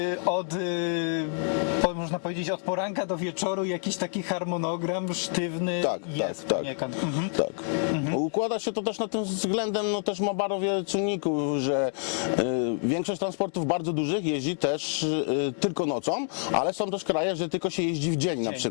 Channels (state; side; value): silent; right; 57 dB below the other